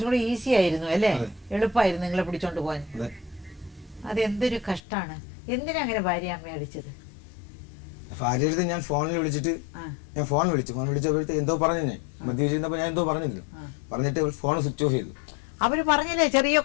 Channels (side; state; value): right; drops out; at 4.8 s